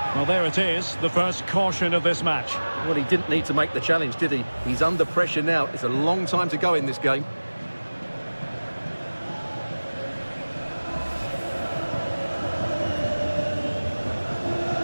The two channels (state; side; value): inverted; both; correlation -1.00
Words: Well, there it is, the first caution of this match. Well, he didn't need to make the challenge, did he? He's under pressure now. It's a long time to go in this game.